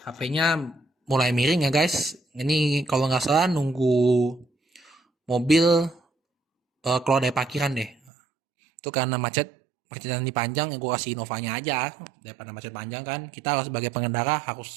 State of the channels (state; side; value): drops out; left; at 8.0 s